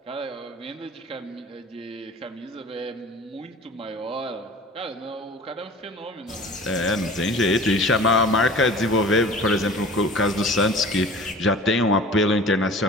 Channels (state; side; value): normal; both; correlation 0.42